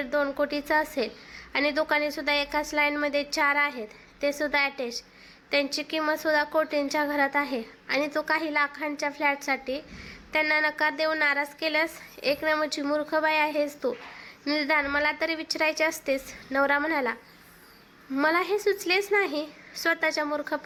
कोटीचं असेल आणि दुकानेसुद्धा एकाच लाईनमध्ये 4 आहेत, ते सुद्धा अटॅच. त्यांची किंमतसुद्धा कोटींच्या घरात आहे आणि तू काही लाखांच्या फ्लॅटसाठी त्यांना नकार देऊन नाराज केल्यास? एक नंबरची मूर्ख बाई आहेस तू. निदान मला तरी विचारायचे असतेस. नवरा म्हणाला. मला हे सुचलेच नाही. स्वतःच्या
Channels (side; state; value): both; identical; correlation 1.00